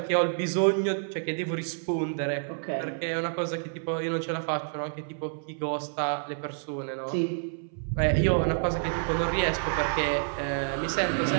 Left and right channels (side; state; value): left; silent; 59 dB below the other